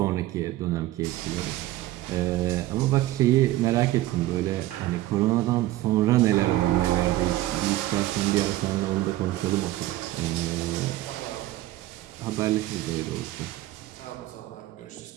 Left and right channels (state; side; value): quieter; left; 16.1 dB